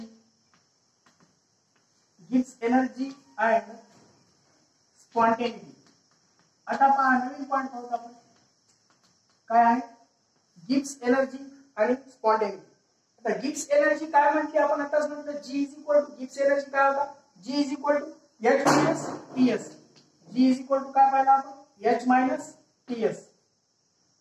and spontaneity. आता पहा नवीन point पाहू आपण काय आहे, गिब्स एनर्जी आणि स्पॉन्टेनिटी. आता गिब्स एनर्जी काय म्हणते आपण आताच म्हटलं, G is equal to Gibbs energy काय होता, G is equal to H minus TS. G is equal to काय पाहिलं आपण, H मायनस TS.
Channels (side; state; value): both; identical; correlation 1.00